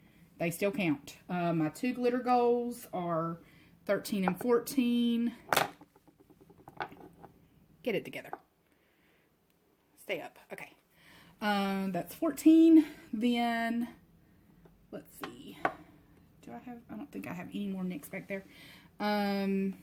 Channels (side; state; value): both; identical; correlation 1.00